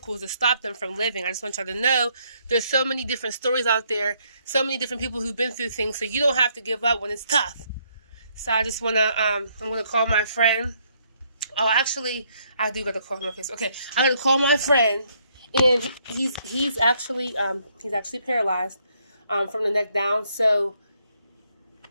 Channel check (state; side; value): inverted; both; correlation -0.71